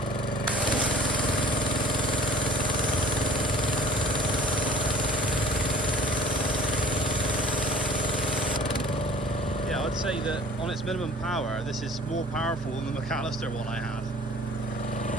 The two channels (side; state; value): both; normal; correlation 0.49